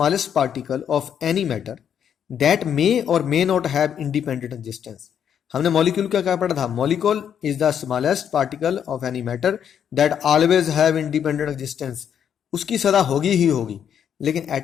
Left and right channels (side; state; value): right; quieter; 8.6 dB